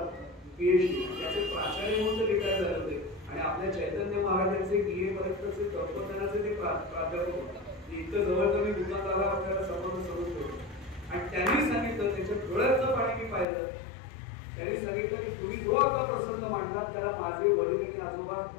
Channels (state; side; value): drops out; right; at 13.5 s